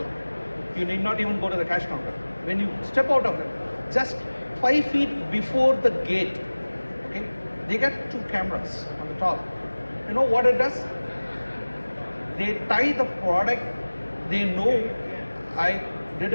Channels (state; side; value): inverted; both; correlation -1.00